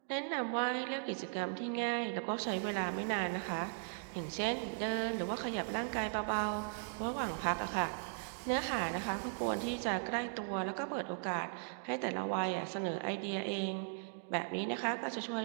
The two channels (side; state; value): left; silent; digital silence